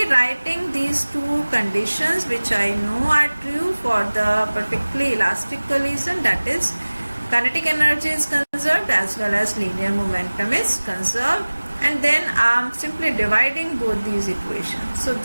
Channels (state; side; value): inverted; both; correlation -1.00